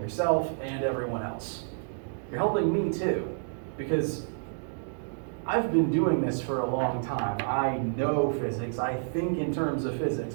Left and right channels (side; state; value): left; silent; digital silence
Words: yourself and everyone else. You're helping me too, because I've been doing this for a long time. I know physics. I think in terms of